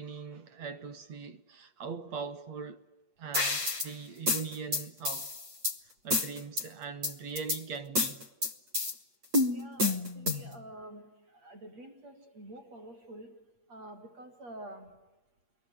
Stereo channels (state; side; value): late; left; 8.5 ms